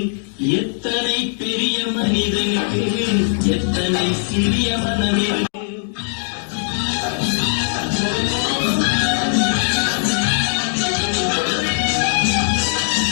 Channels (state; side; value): silent; right; digital silence